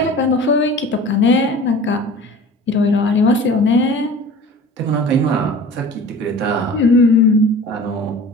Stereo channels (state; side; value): normal; both; correlation 0.41